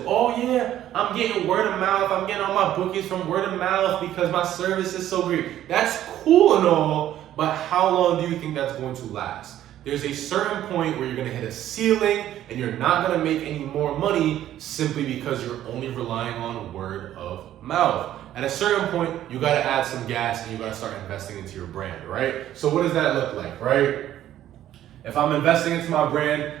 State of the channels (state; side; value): quieter; left; 12.3 dB